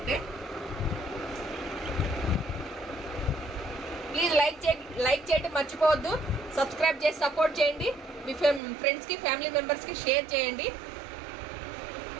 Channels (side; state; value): left; drops out; at 8.6 s